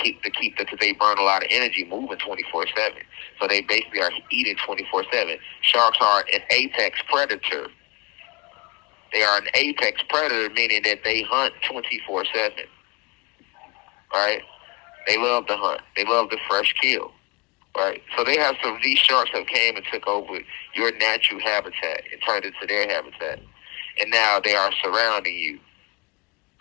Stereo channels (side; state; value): right; quieter; 25.9 dB